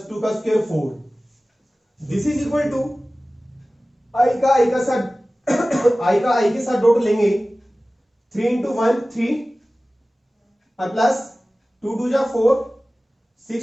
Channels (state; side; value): normal; both; correlation 0.97